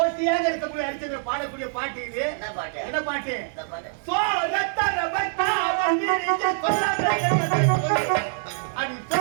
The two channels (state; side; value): silent; left; digital silence